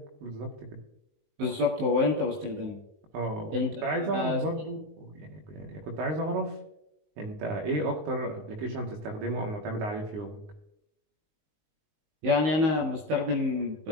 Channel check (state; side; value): late; left; 19 ms